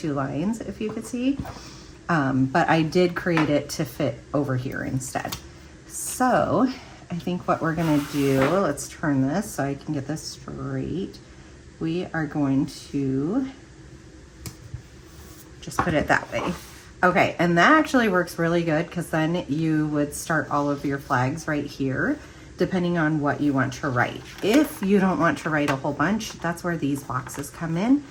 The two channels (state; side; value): identical; both; correlation 1.00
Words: lines, if you could see. But I did create it to fit over here instead. So I think what we're gonna do, let's turn this so I can get this straight. We are going to just put it that way. Okay, and that actually works really good because then you would start all of your flags right here, depending on what you want to write. If you don't want to write a whole bunch, that's where these boxes come in,